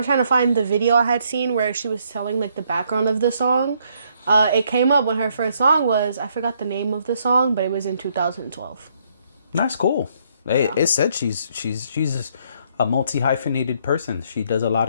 trying to find the video I had seen where she was telling like the background of the song. It came up when her first song was, I forgot the name of the song, but it was in 2012. That's cool. It said she's a multi-hyphenated person. She does a lot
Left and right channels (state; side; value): inverted; both; correlation -0.70